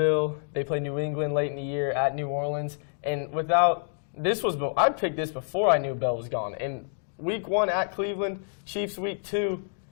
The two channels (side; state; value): right; silent; digital silence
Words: they play New England late in the year, at New Orleans, and I picked this before I knew Bell was gone. And week 1 at Cleveland, Chiefs week 2,